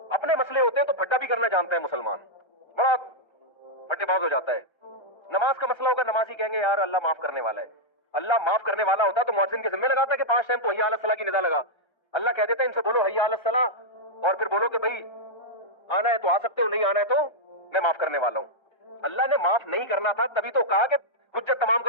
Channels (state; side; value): late; right; 1.3 ms